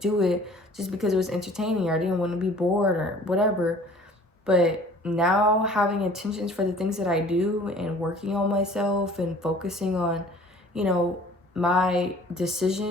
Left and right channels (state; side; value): normal; both; correlation 0.50